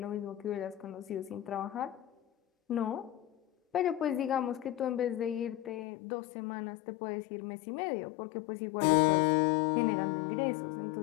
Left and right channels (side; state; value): right; drops out; at 5.9 s